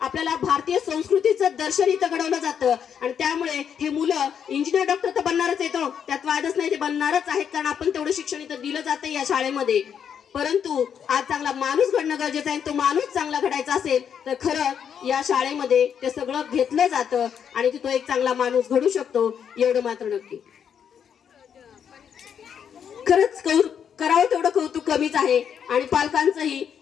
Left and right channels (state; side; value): quieter; right; 8.0 dB